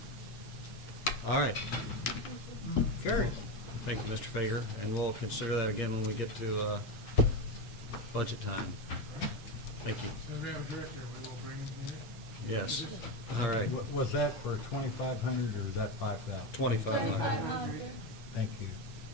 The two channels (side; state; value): right; late; 8.3 ms